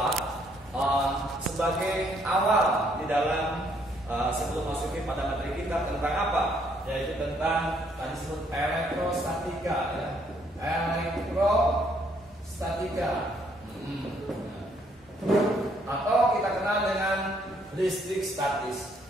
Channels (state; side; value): normal; both; correlation 0.68